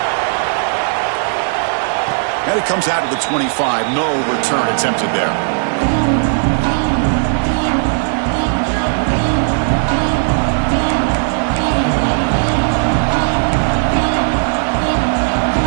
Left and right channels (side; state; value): left; silent; digital silence